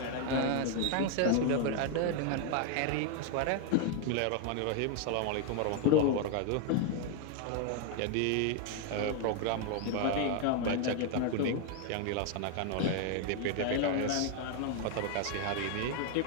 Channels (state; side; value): different; both; correlation 0.01